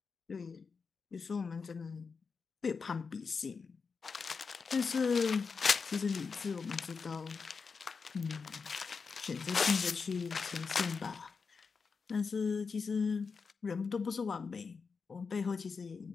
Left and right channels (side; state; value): right; quieter; 5.1 dB